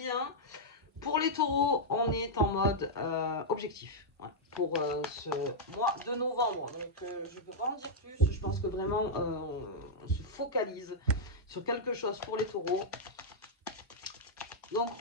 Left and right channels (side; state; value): both; normal; correlation -0.06